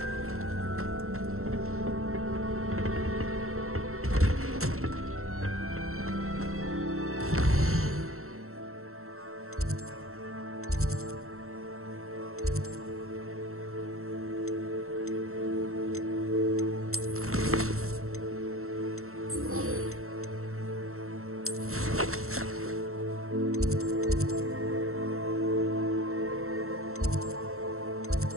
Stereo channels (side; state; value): left; late; 0.63 ms